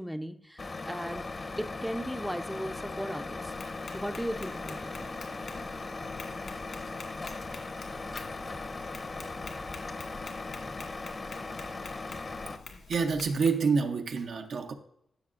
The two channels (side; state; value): both; normal; correlation 0.87